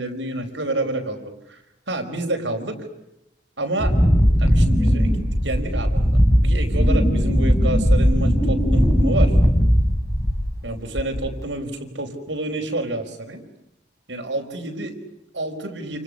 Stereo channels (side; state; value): both; normal; correlation 0.83